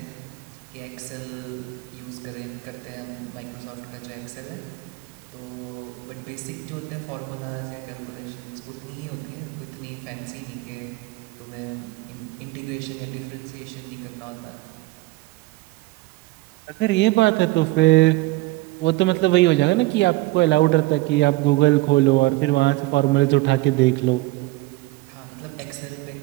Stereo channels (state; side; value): quieter; left; 20.0 dB